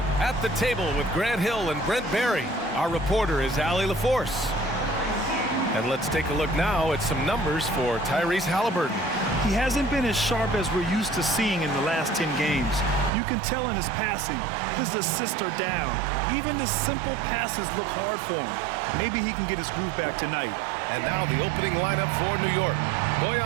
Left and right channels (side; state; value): left; drops out; at 13.1 s